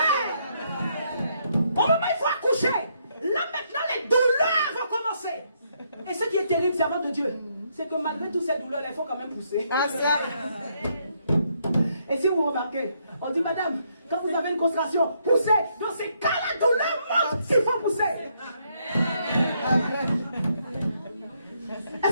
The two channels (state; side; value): inverted; both; correlation -0.74